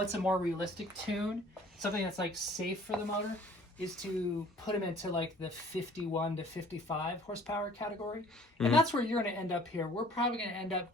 a more realistic tune? Something that's like safe for the motor is to put them into like the 51 to 55 horsepower category. And that's where you're going to end up here. We're probably going to end up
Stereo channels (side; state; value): both; normal; correlation 0.53